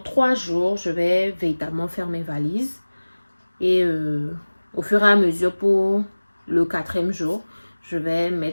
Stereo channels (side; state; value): both; inverted; correlation -1.00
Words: 3 jours, je vais véritablement faire mes valises. Et au fur et à mesure, pour le 4e jour, je vais